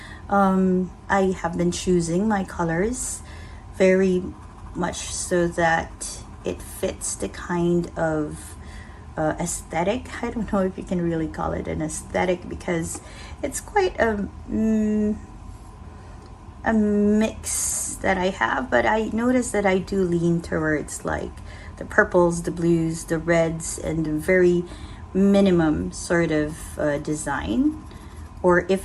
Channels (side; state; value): both; identical; correlation 1.00